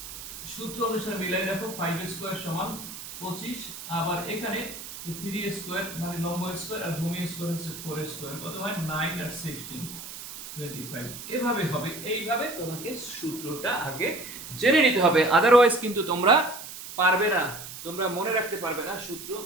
সূত্র অনুসারে মিলাই দেখো, 5 স্কয়ার সমান 25, আবার এখানে 3 স্কয়ার মানে লম্ব স্কয়ার আর ভূমি স্কয়ার হচ্ছে 4 স্কয়ার, কত হয় 9 আর 16 25। এভাবে হবে, এইভাবে তোমাকে সূত্রটা আগে জেনে নিতে হবে, আদারওয়াইজ কিন্তু তোমরা পারবে না, তোমরা মনে রাখতে পারবে না, সূত্র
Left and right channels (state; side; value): noise; right; hiss, 11 dB below the sound